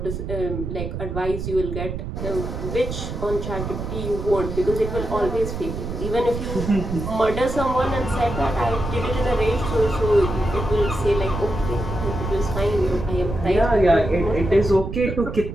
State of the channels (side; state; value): right; noise; rumble, 5 dB below the sound